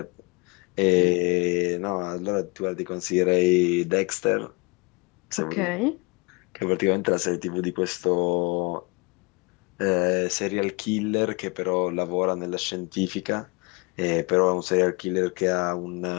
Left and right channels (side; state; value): right; quieter; 28.5 dB